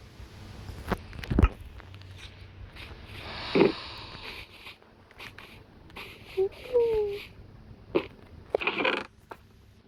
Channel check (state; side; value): identical; both; correlation 1.00